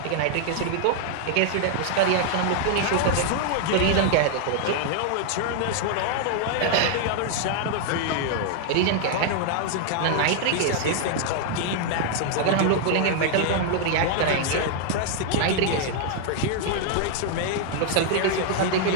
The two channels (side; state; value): both; different; correlation 0.00